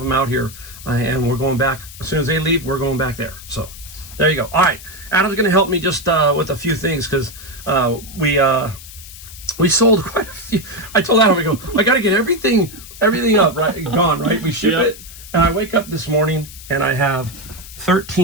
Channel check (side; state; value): left; noise; hiss, 16 dB below the sound